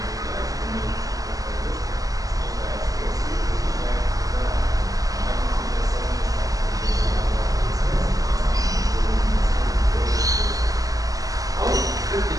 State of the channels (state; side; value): late; left; 0.17 ms